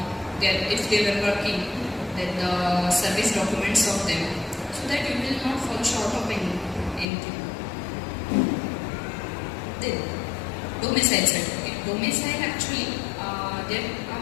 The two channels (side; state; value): right; drops out; at 7.1 s